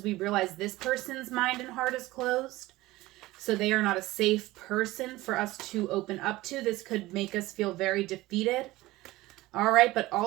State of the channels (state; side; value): quieter; left; 18.5 dB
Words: we realize this person's mind and heart is closed, so they are not a safe person for us to open up to. This could make us feel very defeated. All right, but